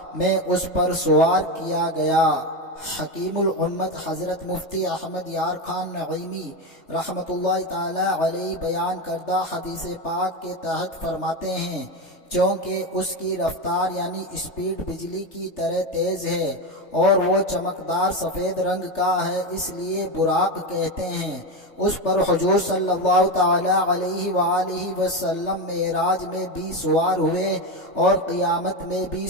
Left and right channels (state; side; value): late; right; 3.3 ms